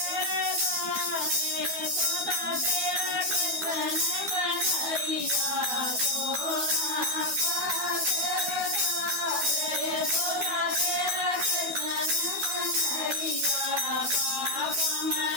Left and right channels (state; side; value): late; left; 12 ms